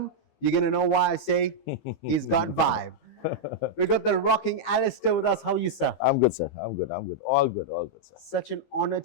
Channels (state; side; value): late; right; 15 ms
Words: you're gonna know why I say he's got vibe. We got the rocking Alister with us. How are you, sir? I'm good, sir. I'm good. I'm good. All good. All good, sir. Such an honor